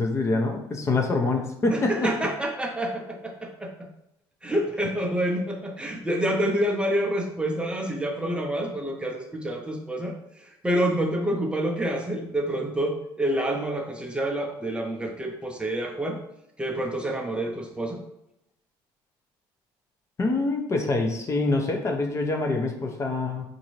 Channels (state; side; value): normal; both; correlation 0.67